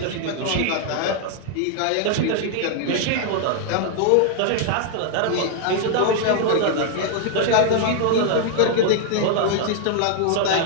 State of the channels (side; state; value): both; different; correlation 0.00